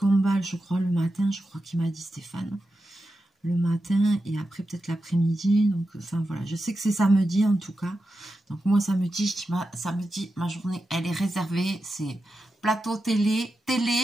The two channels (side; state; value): both; normal; correlation 0.90